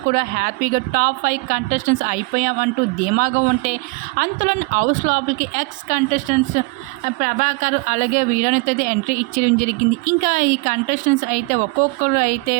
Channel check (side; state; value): left; quieter; 27.5 dB